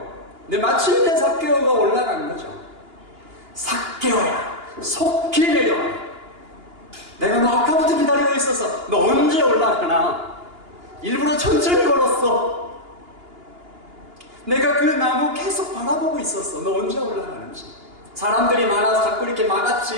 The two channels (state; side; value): late; left; 2.9 ms